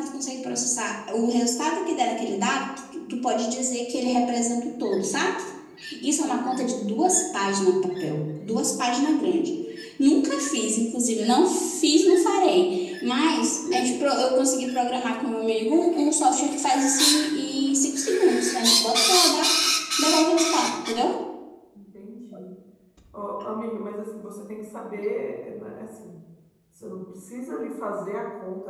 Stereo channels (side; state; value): both; identical; correlation 1.00